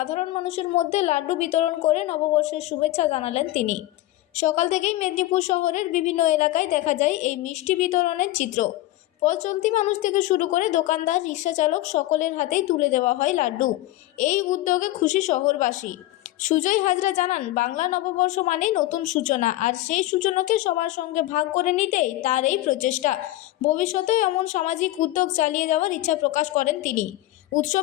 মানুষের মধ্যে লাড্ডু বিতরণ করে নববর্ষের শুভেচ্ছা জানালেন তিনি। সকাল থেকেই মেদিনীপুর শহরের বিভিন্ন এলাকায় দেখা যায় এই মিষ্টি বিতরণের চিত্র। পথ চলতি মানুষ থেকে শুরু করে দোকানদার, রিক্সা চালক সকলের হাতেই তুলে দেওয়া হয় লাড্ডু। এই উদ্যোগে খুশি শহরবাসী। সুজয় হাজরা জানান, বাংলা নববর্ষ মানেই নতুন সূচনা, আর সেই সূচনাকে সবার সঙ্গে ভাগ করে নিতেই তার এই প্রচেষ্টা। ভবিষ্যতেও এমন সামাজিক উদ্যোগ চালিয়ে যাওয়ার ইচ্ছা প্রকাশ করেন তিনি।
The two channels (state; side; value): quieter; right; 16.4 dB